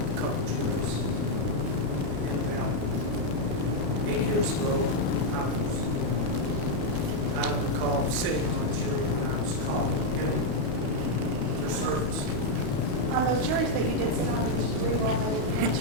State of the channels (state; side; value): late; left; 29 ms